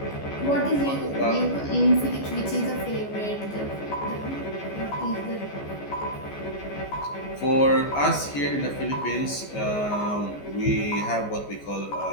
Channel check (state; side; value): late; right; 14 ms